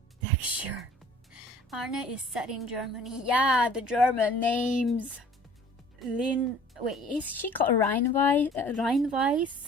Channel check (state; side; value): normal; both; correlation 0.50